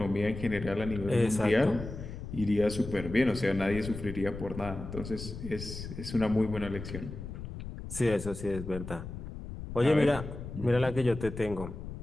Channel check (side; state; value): left; noise; rumble, 9 dB below the sound